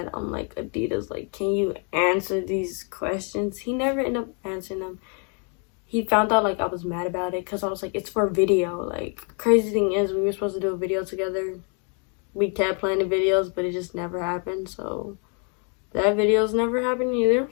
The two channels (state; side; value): quieter; right; 38.8 dB